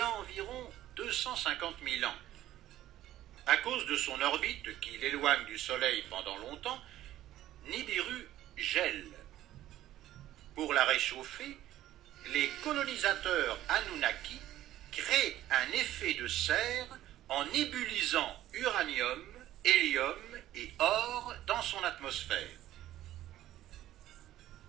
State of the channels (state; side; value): quieter; left; 13.7 dB